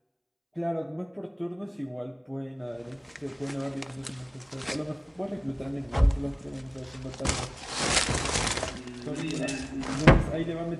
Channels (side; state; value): both; identical; correlation 1.00